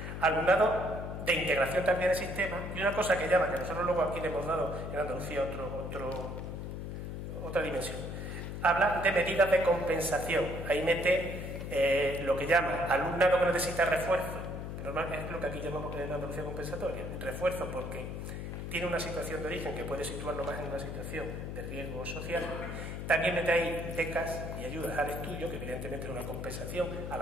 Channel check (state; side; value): noise; left; hum, 6 dB below the sound